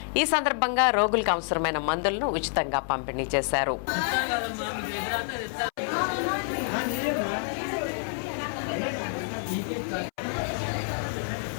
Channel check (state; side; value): silent; right; 59 dB below the other